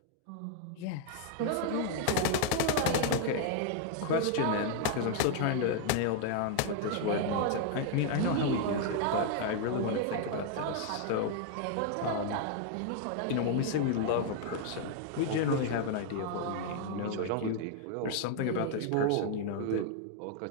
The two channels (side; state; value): both; different; correlation 0.00